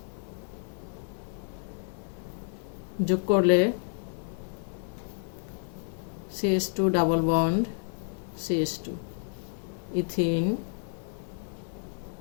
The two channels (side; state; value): right; silent; 58 dB below the other